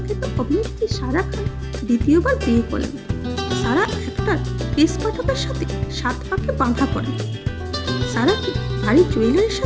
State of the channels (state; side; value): identical; both; correlation 1.00